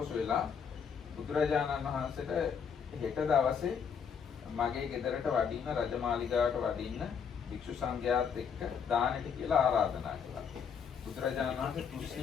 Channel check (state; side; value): quieter; right; 6.9 dB